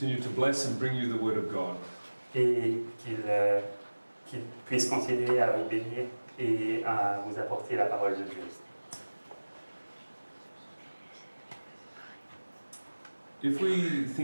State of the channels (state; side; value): inverted; both; correlation -1.00